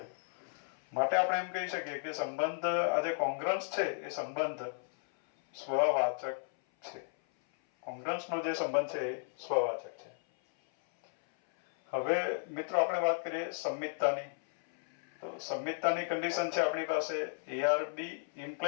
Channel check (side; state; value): right; silent; 55 dB below the other